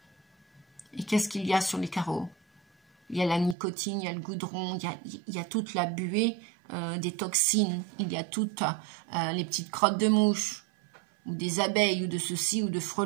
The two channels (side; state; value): left; drops out; at 3.6 s